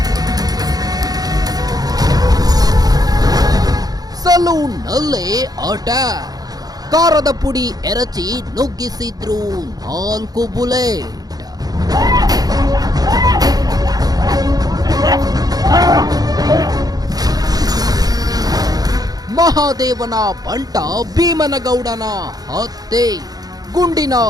ಸಲೂನ್ನಲ್ಲೇ ಅಟ್ಯಾಕ್. ಕಾರದ ಪುಡಿ ಎರಚಿ ನುಗ್ಗಿಸಿದ್ರು 4 ಬುಲೆಟ್. ಮಹಾದೇವನ ಬಂಟ ಭೀಮನಗೌಡನ ಹತ್ಯೆ. ಗುಂಡಿನ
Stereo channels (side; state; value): left; late; 0.19 ms